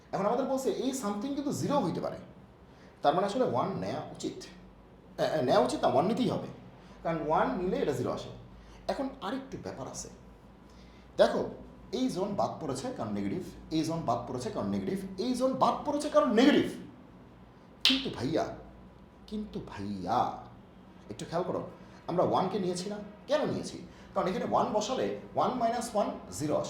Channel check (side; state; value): both; identical; correlation 1.00